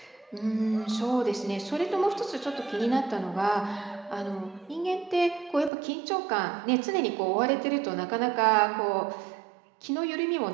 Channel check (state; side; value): drops out; left; at 5.7 s